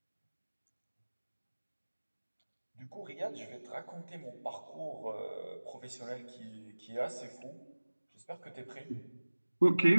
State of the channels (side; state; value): both; inverted; correlation -1.00